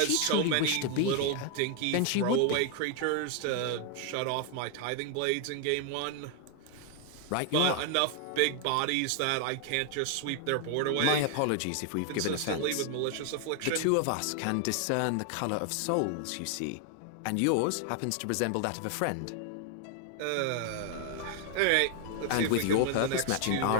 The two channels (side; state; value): both; different; correlation 0.00